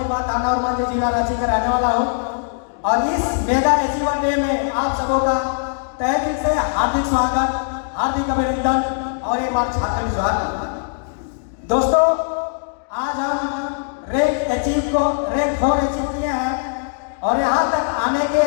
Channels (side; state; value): right; silent; digital silence